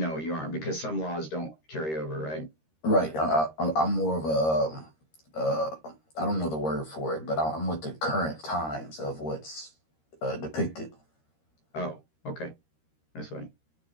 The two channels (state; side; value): late; right; 13 ms